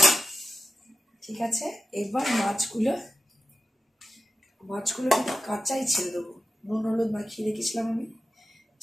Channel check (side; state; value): both; normal; correlation 0.91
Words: ঠিক আছে, এবার মাছগুলো কিন্তু কাঁচাই ছেড়ে দেবো, নুন হলুদ মাখিয়ে রেখেছিলাম আমি,